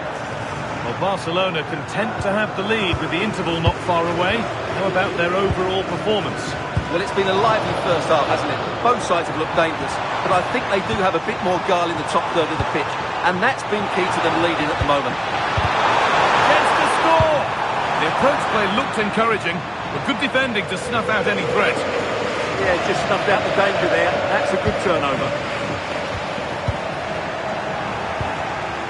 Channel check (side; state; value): both; identical; correlation 1.00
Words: Well, Barcelona content to have the lead with the interval not far away. How about their overall performance? Well, it's been a lively first half, hasn't it? Both sides have looked dangerous, but I think they do have a bit more guile in the top third of the pitch, and that's been key to them leading at the moment. Gets to score! The approach play looked encouraging, but good defending to snuff out any threat. Yeah, just snuffed out the danger there. That's a good turnover.